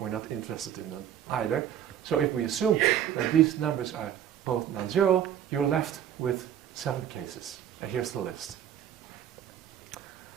not interested in them either. So if we assume that these numbers are both non-zero, you're left with 7 cases. And here's the list.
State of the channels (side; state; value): left; quieter; 10.0 dB